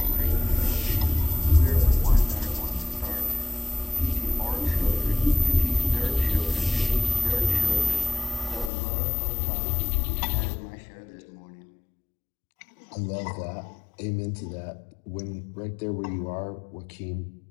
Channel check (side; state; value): right; drops out; at 8.7 s